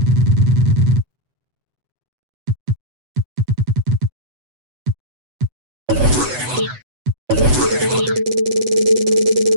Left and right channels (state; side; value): late; left; 8.0 ms